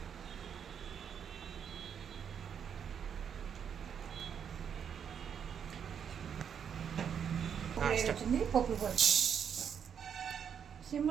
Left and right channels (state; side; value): quieter; left; 7.8 dB